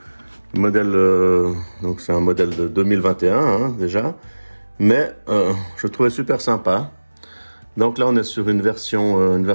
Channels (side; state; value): both; inverted; correlation -1.00